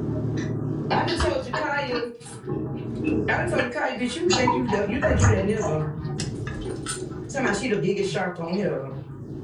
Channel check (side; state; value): both; identical; correlation 1.00